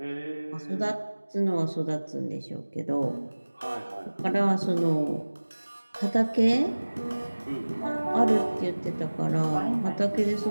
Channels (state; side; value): inverted; both; correlation -1.00